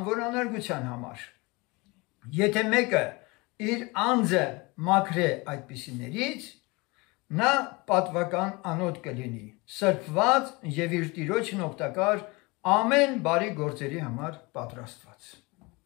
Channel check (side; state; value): right; quieter; 25.3 dB